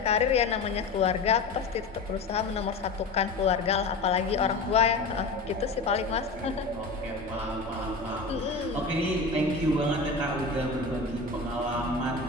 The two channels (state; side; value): quieter; right; 3.7 dB